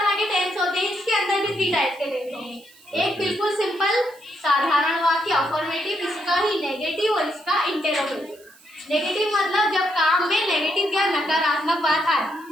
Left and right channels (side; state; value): right; noise; hiss, 26 dB below the sound